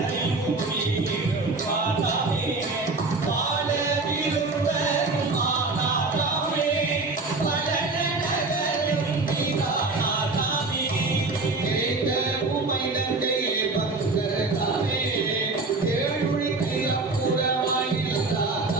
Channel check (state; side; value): quieter; left; 3.5 dB